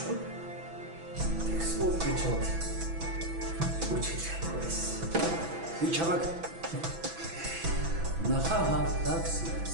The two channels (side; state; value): left; late; 6.0 ms